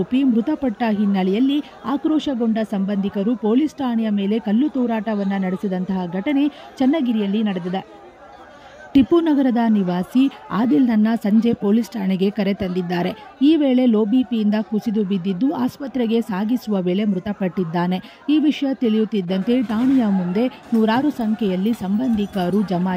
ಮೃತಪಟ್ಟ ಹಿನ್ನೆಲೆಯಲ್ಲಿ ಆಕ್ರೋಶಗೊಂಡ ಸಂಬಂಧಿಕರು ಪೊಲೀಸ್ ಠಾಣೆಯ ಮೇಲೆ ಕಲ್ಲು ತೂರಾಟವನ್ನು ನಡೆಸಿದಂತಹ ಘಟನೆ ಚನ್ನಗಿರಿಯಲ್ಲಿ ನಡೆದಿದೆ. ಟಿಪ್ಪು ನಗರದ ನಿವಾಸಿ ಆದಿಲ್ನನ್ನ ಸಂಜೆ ಪೊಲೀಸ್ ಠಾಣೆಗೆ ಕರೆ ತಂದಿದ್ದಾರೆ. ಈ ವೇಳೆ ಲೋ ಬಿಪಿಯಿಂದ ಕುಸಿದು ಬಿದ್ದಿದ್ದು ಆಸ್ಪತ್ರೆಗೆ ಸಾಗಿಸುವ ವೇಳೆ ಮೃತಪಟ್ಟಿದ್ದಾನೆ. ಈ ವಿಷಯ ತಿಳಿಯುತ್ತಿದ್ದಂತೆ ಠಾಣೆಯ ಮುಂದೆ ನೂರಾರು ಸಂಖ್ಯೆಯಲ್ಲಿ ಸಂಬಂಧಿಕರು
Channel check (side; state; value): both; identical; correlation 1.00